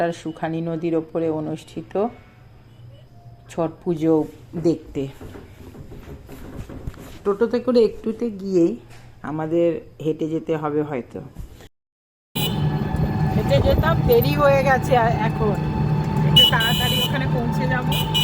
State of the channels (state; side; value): identical; both; correlation 1.00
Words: সুখানি নদীর ওপরে অনুষ্ঠিত ছট পুজো দেখতে। টোটোতে করে একটুতে গিয়েই আমাদের হেঁটে যেতে হবে, হয়তো হেঁটে যেতাম, দেরি হয়ে গেছে এখন, একটু তাড়াতাড়ি ওখানে পৌঁছে যাব।